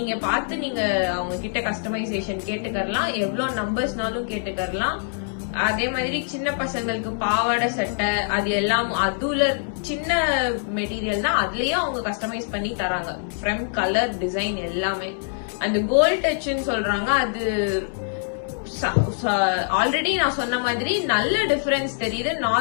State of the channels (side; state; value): right; silent; 63 dB below the other